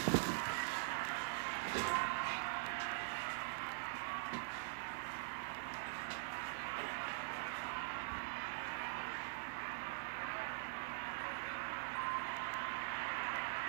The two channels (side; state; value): left; silent; digital silence